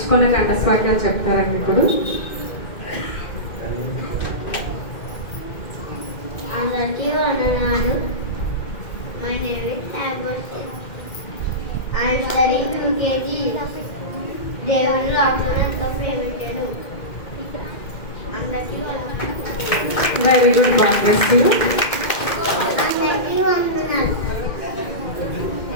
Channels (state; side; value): late; right; 2.1 ms